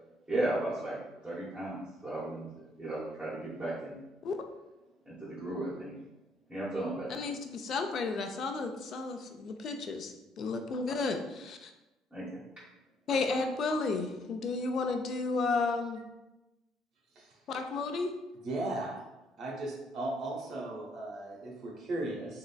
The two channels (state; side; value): normal; both; correlation 0.69